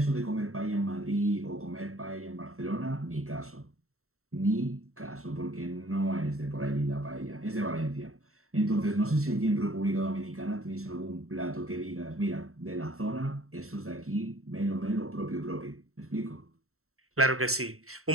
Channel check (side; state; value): left; late; 0.63 ms